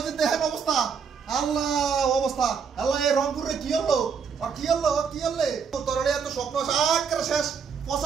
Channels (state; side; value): quieter; left; 6.3 dB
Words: যে দেখেন অবস্থা, আল্লাহ অবস্থা, আল্লাহ এই রংপুরে কি হলো, কি হলো, কি হলে তোর এত স্বপ্ন আকারে শেষ।